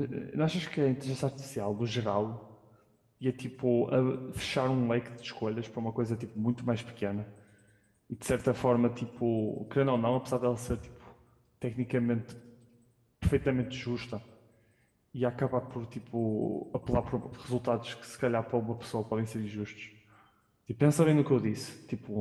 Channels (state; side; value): identical; both; correlation 1.00